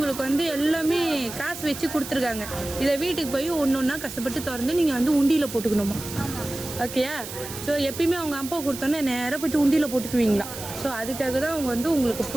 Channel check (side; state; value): right; noise; hiss, 10 dB below the sound